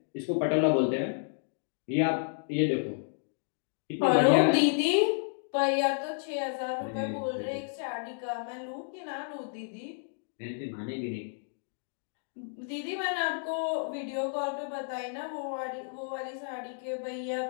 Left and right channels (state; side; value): silent; right; digital silence